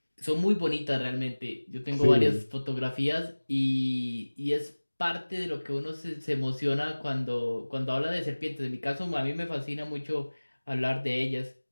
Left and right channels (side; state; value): both; inverted; correlation -1.00